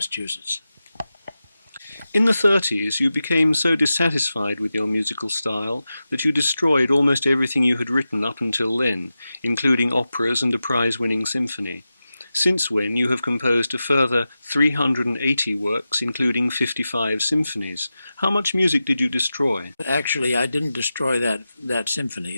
In the 30s, you became so dissatisfied with your musical style that you destroyed almost everything you had written up until then, including operas and a prize-winning symphony. Since when you have composed a further 380 works, including 55 symphonies. How much music did you destroy? Actually, I didn't destroy that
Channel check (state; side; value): inverted; both; correlation -0.93